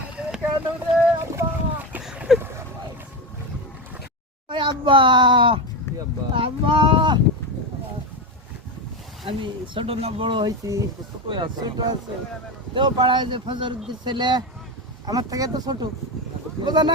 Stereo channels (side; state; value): both; normal; correlation 0.15